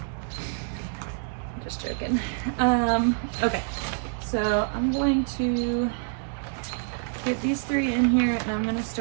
Just joking. Okay, so I'm going to get these 3 in here, and I'm going to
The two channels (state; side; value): silent; left; digital silence